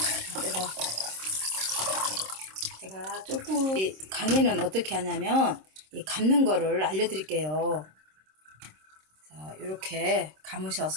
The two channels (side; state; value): left; late; 26 ms